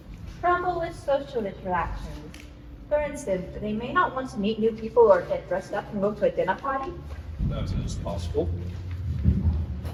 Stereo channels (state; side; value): identical; both; correlation 1.00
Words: Trouble with social interactions. For instance, they may not want to meet new people or get dressed up and go to a dinner party. That is possible.